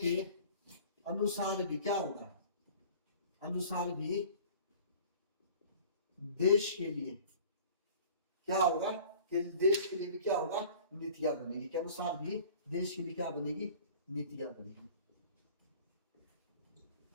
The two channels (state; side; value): inverted; both; correlation -0.46